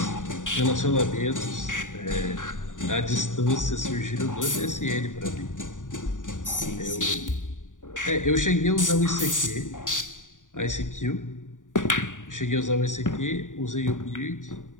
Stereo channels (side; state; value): right; late; 0.87 ms